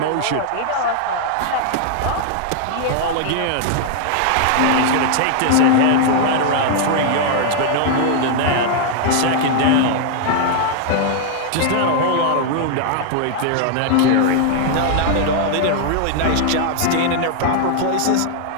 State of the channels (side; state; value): both; different; correlation 0.00